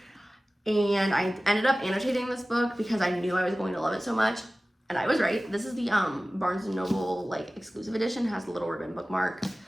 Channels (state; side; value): normal; both; correlation 0.97